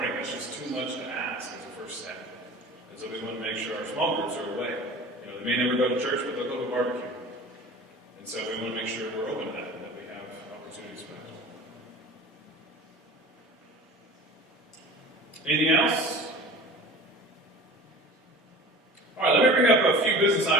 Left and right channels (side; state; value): both; normal; correlation 0.39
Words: That's just too much to ask as a first step. And so we want to make sure our small groups are away. They may never go to church, but they'll go to a barbecue. And so we want to make sure we're open to that, and that we have opportunities for that. Anything else? All right, let me bring up a few business